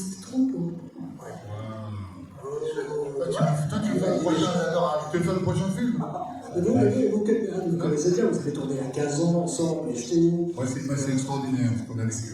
trop court. Ouais. Tu veux faire le prochain film? Vous connaissez bien, vous avez tourné à 15 ans ensemble, et je t'ai dit. Ouais, c'est extraordinaire ce qu'on a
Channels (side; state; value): both; identical; correlation 1.00